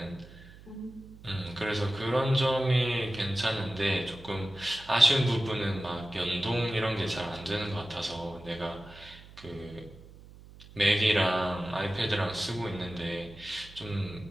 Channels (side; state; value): right; noise; hum, 20 dB below the sound